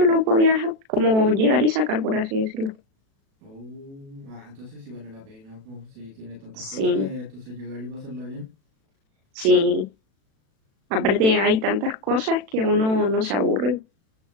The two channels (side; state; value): left; late; 36 ms